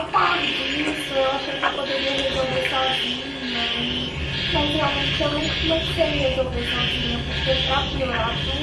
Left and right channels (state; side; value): identical; both; correlation 1.00